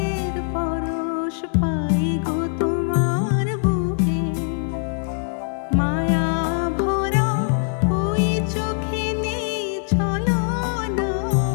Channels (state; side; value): silent; right; digital silence